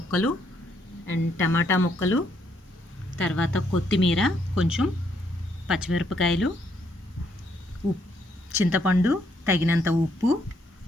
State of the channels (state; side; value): normal; both; correlation 0.72